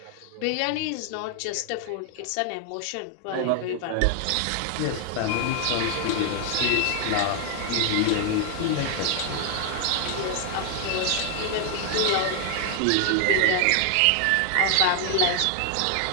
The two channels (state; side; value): different; both; correlation 0.00